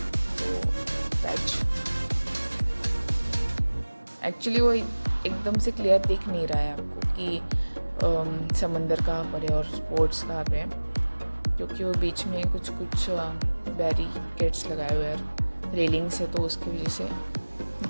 तो पैच एक्चुअली वो एकदम से क्लियर दिख नहीं रहा है आपको कि समंदर कहाँ पर है और स्पोर्ट्स कहाँ पे है, क्योंकि वो बीच में कुछ बैरिकेड्स लगाए हुए हैं, रेलिंग्स है, तो उसकी वजह से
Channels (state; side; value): inverted; both; correlation -1.00